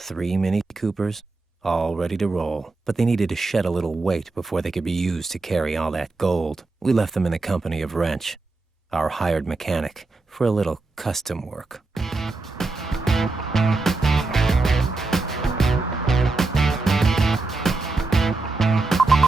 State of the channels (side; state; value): left; quieter; 3.5 dB